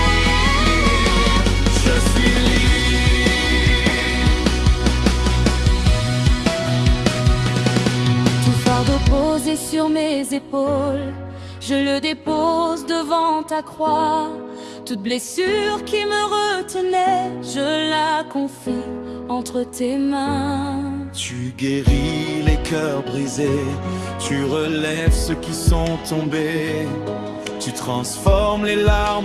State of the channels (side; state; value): both; identical; correlation 1.00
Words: je suis libre. Tout fardeau posé sur mes épaules, je le dépose devant ta croix. Toute blessure qui me retenait, je la confie entre tes mains. Tu guéris les cœurs brisés, tu relèves ceux qui sont tombés. Tu Tu transformes les